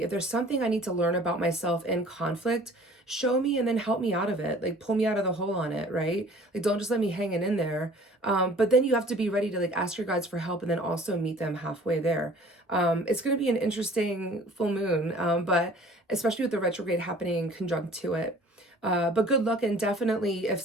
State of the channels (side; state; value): both; normal; correlation 0.50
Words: If there's something I need to learn about myself in conflict, show me and then help me out of it. Like pull me out of the hole on it, right? Like don't just let me hanging in there. But then you have to be ready to like ask your guides for help and then also meet them halfway there. It's going to be an interesting full moon, but especially with the retrograde happening conjunct to it. But good luck, and definitely if